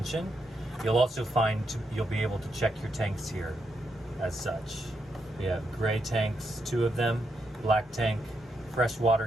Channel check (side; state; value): both; normal; correlation 0.81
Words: You'll also find you'll be able to check your tanks here as such. We have gray tanks, 2 of them, black tank, fresh water